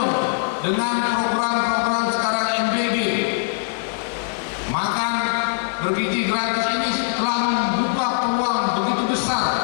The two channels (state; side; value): silent; right; digital silence